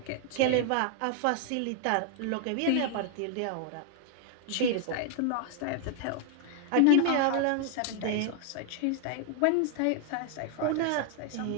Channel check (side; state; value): both; different; correlation 0.00